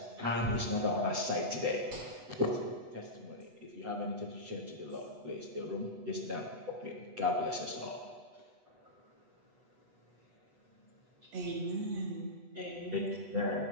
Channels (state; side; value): late; left; 8.1 ms